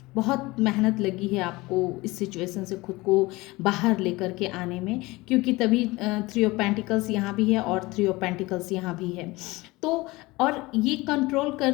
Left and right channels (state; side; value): quieter; right; 21.6 dB